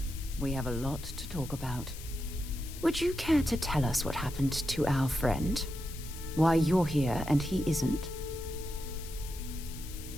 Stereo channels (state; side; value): noise; left; hiss, 14 dB below the sound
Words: We have a lot to talk about. Would you care to tell us what happened to our friend? Why you're here and he isn't?